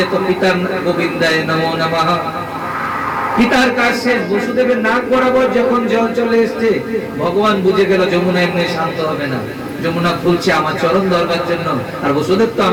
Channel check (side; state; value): both; identical; correlation 1.00